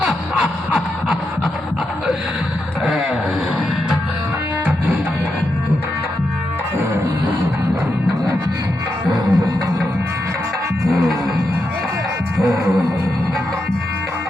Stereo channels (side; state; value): both; normal; correlation 0.85